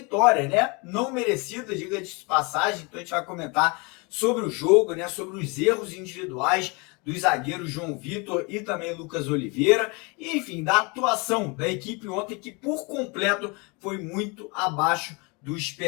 né? Não merecida, diga-se de passagem. Então a gente vai comentar sobre o jogo, né? Sobre os erros individuais dos zagueiros João Vitor e também Lucas Oliveira, e enfim, da atuação da equipe ontem que por completo foi muito abaixo do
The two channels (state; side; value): quieter; right; 29.4 dB